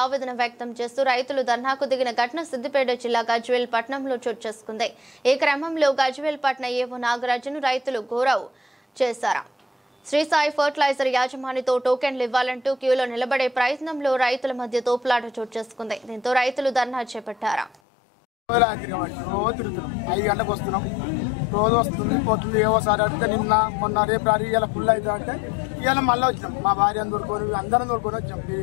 ఆవేదన వ్యక్తం చేస్తూ రైతులు ధర్నాకు దిగిన ఘటన సిద్దిపేట జిల్లా గజ్వేల్ పట్టణంలో చోటు చేసుకుంది. ఈ క్రమంలో గజ్వేల్ పట్టణ ఏవో నాగరాజును రైతులు గౌరవ్ చేశారు. శ్రీ సాయి ఫర్టిలైజర్ యాజమానితో టోకెన్లు ఇవ్వాలంటూ క్యూలో నిలబడే ప్రయత్నంలో రైతుల మధ్య తోపులాట చోటు చేసుకుంది. దీంతో రైతులు ధర్నా చేపట్టారు. రోజు వస్తుంది పోతుంది ఏవోసారి అడిగితే నిన్న మొన్న రేపు రారి ఇలా ఫుల్ అవుతా అంటే ఇవాళ మళ్ళీ వచ్చినాం. మా భార్యను దొరుకుని అందరం దొరుకుని వచ్చాం.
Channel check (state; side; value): drops out; right; at 17.8 s